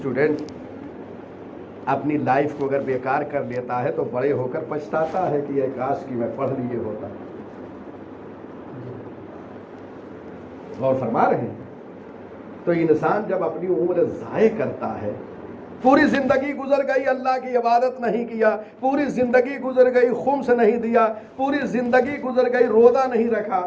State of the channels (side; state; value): both; identical; correlation 1.00